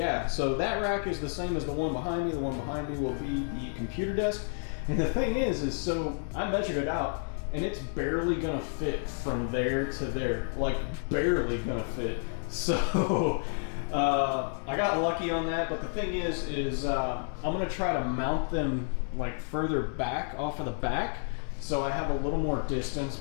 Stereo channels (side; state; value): right; silent; 58 dB below the other